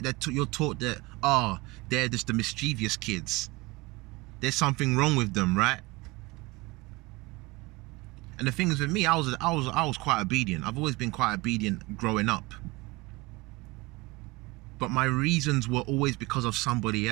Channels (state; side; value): quieter; left; 22.9 dB